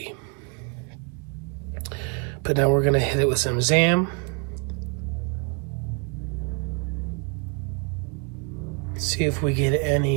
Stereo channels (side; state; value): left; quieter; 35.1 dB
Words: But now we're gonna hit it with some Zam. See if we get